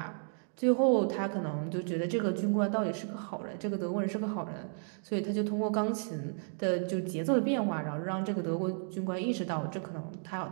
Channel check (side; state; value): left; silent; 56 dB below the other